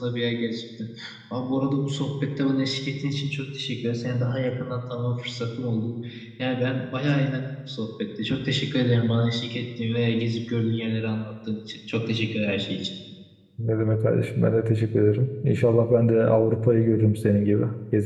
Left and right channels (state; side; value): identical; both; correlation 1.00